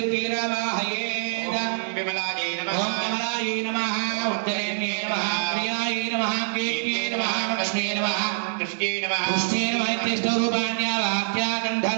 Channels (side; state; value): left; silent; digital silence